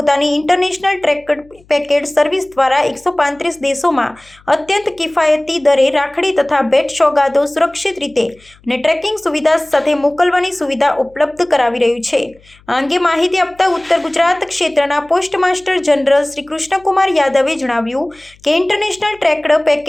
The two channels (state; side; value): noise; left; hum, 29 dB below the sound